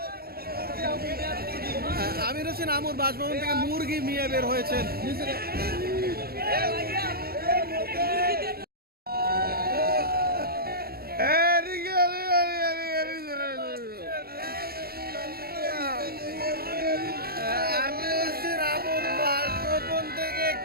আমির হোসেন আমর বাসভবন থেকে মুরগি নিয়ে বের হয়েছেন। আমির হোসেন আমর বাসভবন থেকে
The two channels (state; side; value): late; left; 0.45 ms